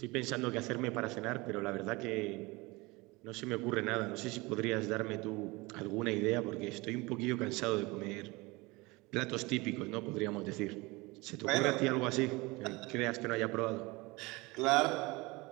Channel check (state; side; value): quieter; left; 23.8 dB